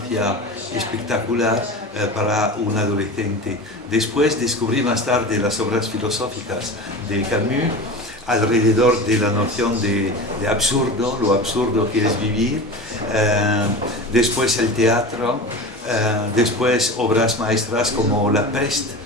espectacular para un adolescente. Después descubrí más tarde las obras filosóficas de Camus, alrededor de la noción de absurdo, lo absurdo que es vivir, después el teatro, después obras maestras como La Peste.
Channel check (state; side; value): normal; both; correlation 0.31